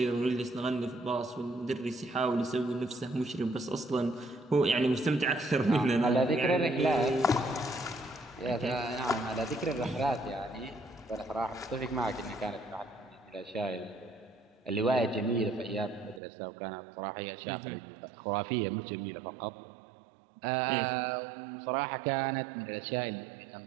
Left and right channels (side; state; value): left; drops out; at 16.2 s